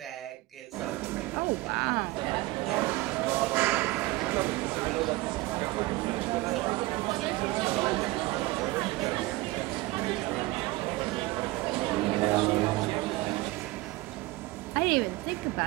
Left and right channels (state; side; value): quieter; left; 20.4 dB